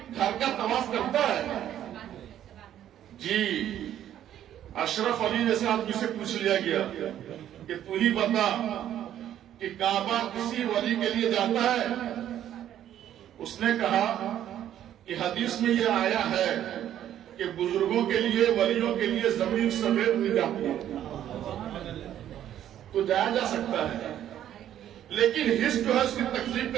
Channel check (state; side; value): quieter; left; 11.1 dB